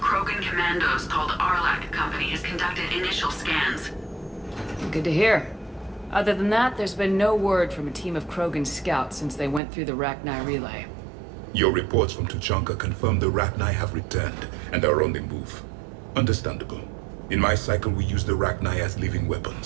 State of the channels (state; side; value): drops out; left; at 9.6 s